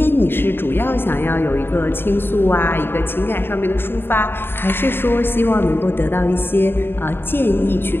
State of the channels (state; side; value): late; right; 0.10 ms